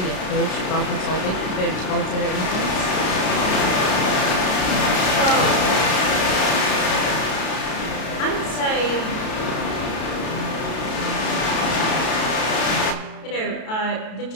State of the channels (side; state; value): right; late; 32 ms